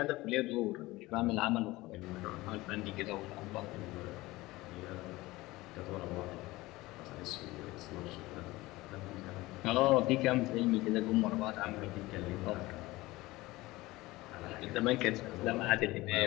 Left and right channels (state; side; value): quieter; right; 19.7 dB